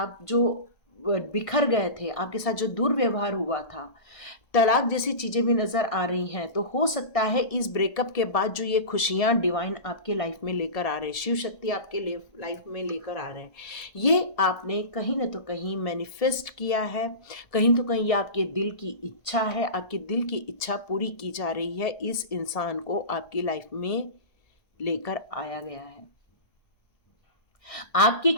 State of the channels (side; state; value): right; late; 1.7 ms